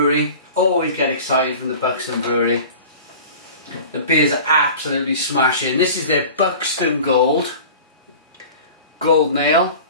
Always get excited from the Buxton Brewery. The beers are absolutely smashing. This is their Buxton Gold Ale.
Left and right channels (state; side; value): inverted; both; correlation -0.40